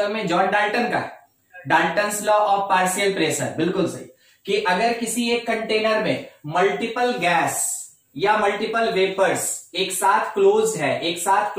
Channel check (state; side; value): identical; both; correlation 1.00